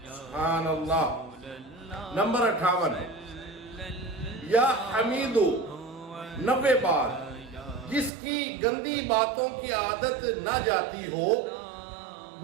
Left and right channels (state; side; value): drops out; left; at 8.1 s